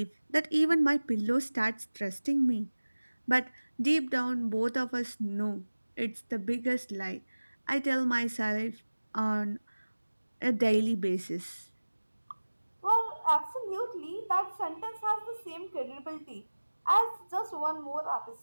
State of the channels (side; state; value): both; inverted; correlation -1.00